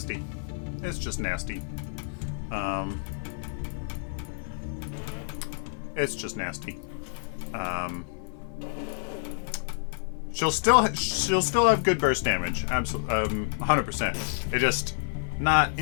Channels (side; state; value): right; silent; 55 dB below the other